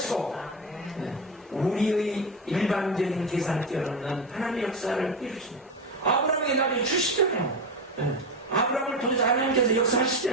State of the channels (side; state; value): both; normal; correlation 0.18